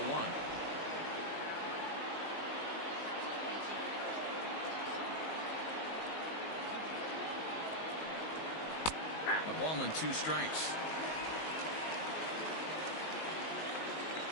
1. A ball and 2 strikes.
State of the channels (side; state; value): right; late; 19 ms